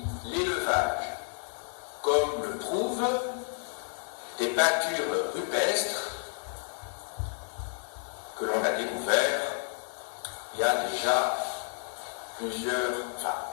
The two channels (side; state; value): right; silent; 56 dB below the other